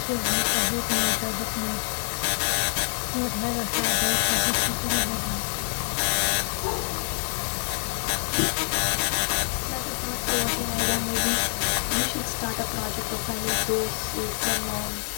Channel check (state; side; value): silent; right; digital silence